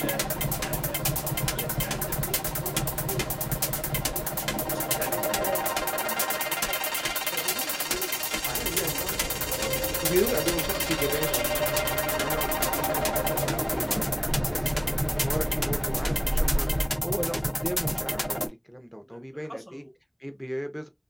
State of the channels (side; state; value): both; identical; correlation 1.00